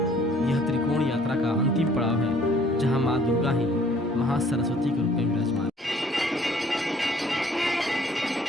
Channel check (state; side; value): normal; both; correlation 0.58